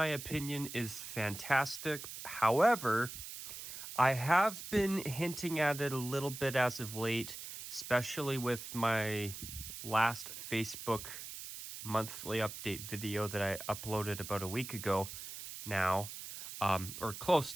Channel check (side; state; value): right; noise; hiss, 10 dB below the sound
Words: opinion, is fantastic. However, I have been hinting at it a little bit as of late, especially with my last Facebook monthly update video that I uploaded about a week ago now, or close